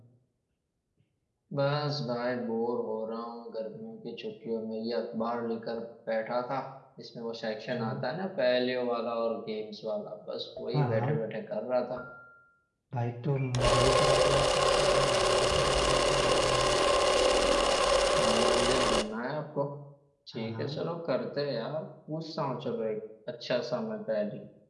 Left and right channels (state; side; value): identical; both; correlation 1.00